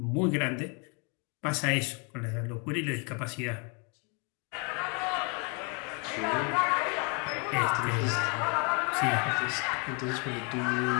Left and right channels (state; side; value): quieter; right; 34.5 dB